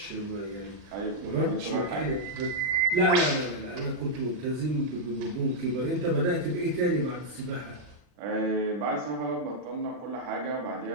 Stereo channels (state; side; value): late; left; 40 ms